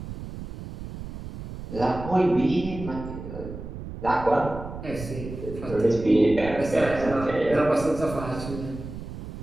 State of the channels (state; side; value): noise; right; rumble, 10 dB below the sound